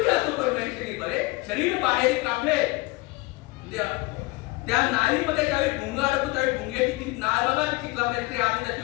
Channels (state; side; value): quieter; right; 23.0 dB